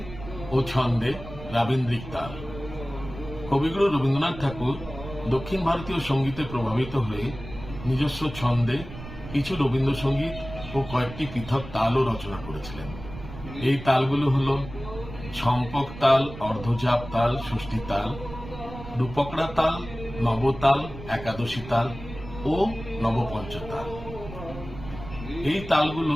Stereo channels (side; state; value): right; noise; rumble, 13 dB below the sound